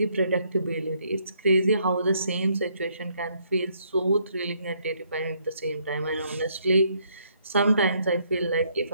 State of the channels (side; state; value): both; inverted; correlation -0.70